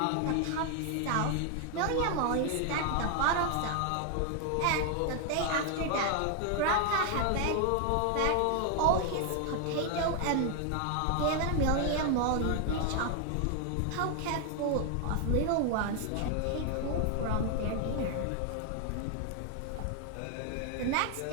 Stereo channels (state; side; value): different; both; correlation 0.00